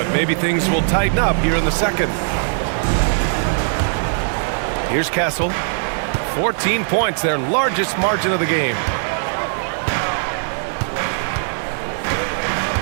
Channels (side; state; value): left; silent; digital silence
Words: maybe things will tighten up here in the second. Here's Castle. 14 points, their largest margin of the game.